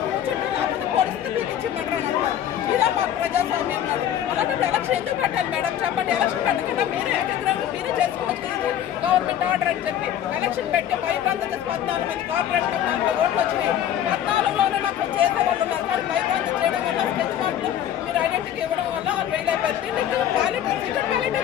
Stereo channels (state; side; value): quieter; right; 10.6 dB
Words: కూర్చుంటే లేకపోతే పోలీసులు మీకు ఇచ్చిమంటారు అంటారు. ఇదా మా ప్రజాస్వామ్యం కాదు. అలాంటప్పుడు ఎలక్షన్ ఎందుకు పెట్టాలి మేడం చెప్పండి? ఎలక్షన్ పెట్టకుండా మీరే ఏకగ్రహం మీరే చేసుకోవచ్చు, గవర్నమెంట్ ఆర్డర్ అని చెప్పి ఎలక్షన్ పెట్టి భయభ్రాంతం 14 మంది కార్పొరేట్ 40 ఓట్లు వచ్చినాయి. 14లోనే నాకు చేసేవాళ్ళు ఉన్నారు, కానీ భయభ్రాంతం చేయడం వల్ల స్కెచ్ మార్కులు మీరు ఐడెంటిటీ ఇవ్వడం వల్ల వాళ్ళు వేయలేకపోతే బ్యాలెట్ సీక్రెట్ బ్యాలెట్